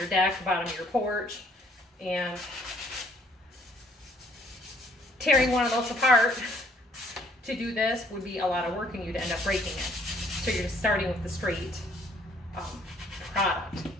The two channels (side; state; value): both; normal; correlation 0.62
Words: deck, the bottom of your porch. And tearing one of those apart to do this would be a lot of work and you'd end up breaking it. So you're just starting with the straight product.